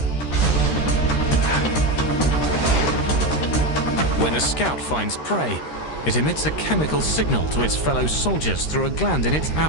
When a scout finds prey, it emits a chemical signal to its fellow soldiers through a gland in its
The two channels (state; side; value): late; right; 13 ms